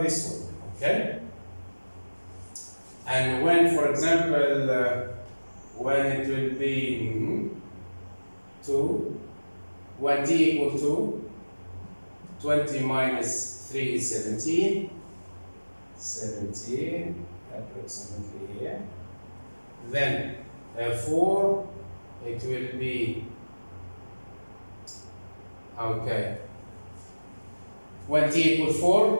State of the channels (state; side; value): inverted; both; correlation -1.00